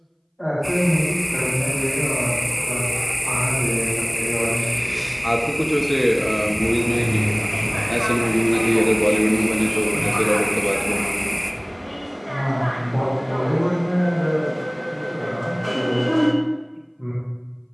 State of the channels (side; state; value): both; identical; correlation 1.00